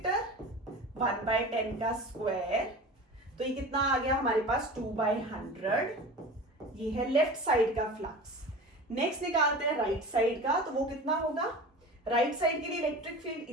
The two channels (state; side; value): normal; both; correlation 0.35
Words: 1/10 का स्क्वायर, तो ये कितना आ गया हमारे पास 2/100। ये है लेफ्ट साइड का फ्लक्स। नेक्स्ट निकालते हैं राइट साइड का, तो वो कितना होगा, राइट साइड के लिए इलेक्ट्रिक फील्ड